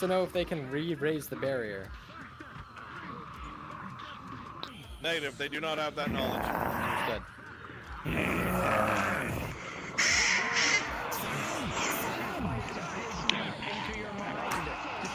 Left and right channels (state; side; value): identical; both; correlation 1.00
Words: to know if they can re-raise the barrier. Negative, they do not have that knowledge. Understood.